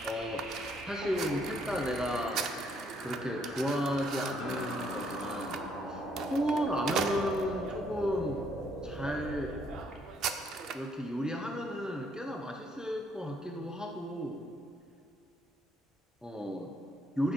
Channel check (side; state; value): both; normal; correlation 0.69